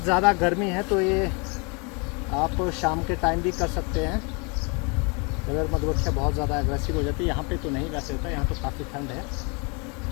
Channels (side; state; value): right; quieter; 32.1 dB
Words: ज़्यादा गर्मी है तो ये आप शाम के टाइम भी कर सकते हैं, अगर मधुमक्खियाँ बहुत ज़्यादा एग्रेसिव हो जाती है। यहाँ पे तो नहीं वैसे होता, यहाँ तो काफ़ी ठंड है।